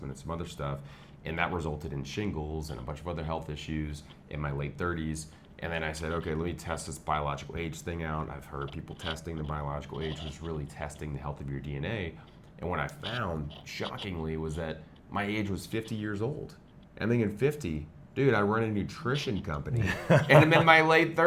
and some other stuff. And that resulted in shingles and a bunch of other health issues in my late 30s. And then I said, okay, let me test this biological age thing out. I've heard people testing the biological age was really testing the health of your DNA. And what I found, shockingly, was that my age was 50 years old. I'm thinking 50, dude, I run a nutrition company and I'm in my late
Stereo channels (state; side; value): identical; both; correlation 1.00